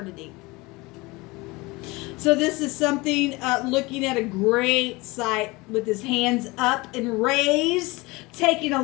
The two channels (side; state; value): right; quieter; 23.4 dB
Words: So this is something, looking at a great sight with his hands up and raised, taking a